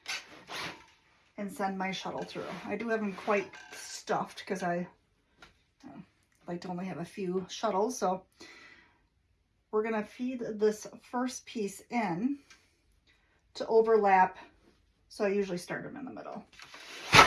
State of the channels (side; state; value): both; identical; correlation 1.00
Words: and send my shuttle through. I do have them quite stuffed because I like to only have a few shuttles. So we're going to feed this first piece in to overlap. So I usually start them in the middle.